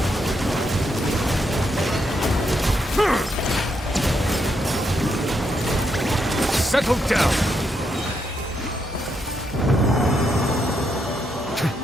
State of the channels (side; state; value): both; normal; correlation 0.79